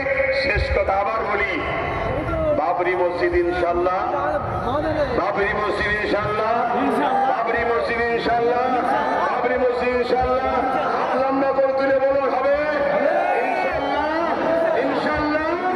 শেষ কথা আবার বলি, বাবরি মসজিদ ইনশাল্লাহ, বাবরি মসজিদ ইনশাল্লাহ, বাবরি মসজিদ ইনশাল্লাহ, বাবরি মসজিদ ইনশাল্লাহ। লম্বা করে তুলে বলো হবে ইনশাল্লাহ, ইনশাল্লাহ।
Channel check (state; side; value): identical; both; correlation 1.00